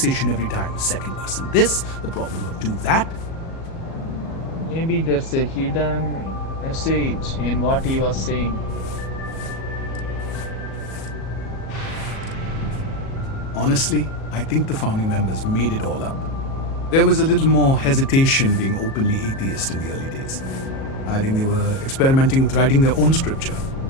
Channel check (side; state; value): right; late; 37 ms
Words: every time. Second person this, the problem of two that. Maybe there's a hidden message in what he was saying. Honestly, I think the founding members made it all up. There was a little more hesitation being openly atheist in the early days. I think they were experimenting with writing their own scripture.